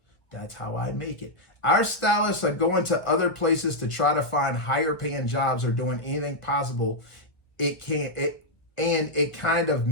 That's how I make it. Our stylists are going to other places to try to find higher paying jobs or doing anything possible. It kind of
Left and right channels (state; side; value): late; right; 1.2 ms